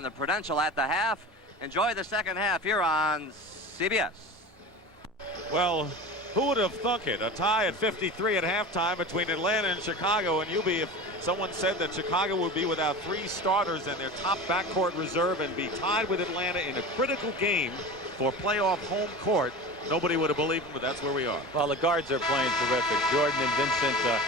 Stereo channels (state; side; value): normal; both; correlation 0.32